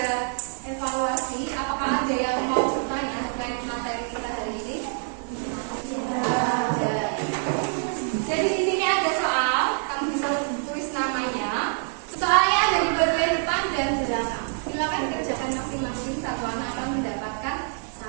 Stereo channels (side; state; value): left; silent; 56 dB below the other